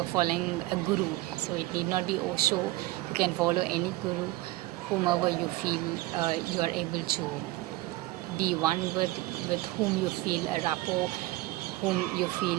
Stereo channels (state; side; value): quieter; left; 18.9 dB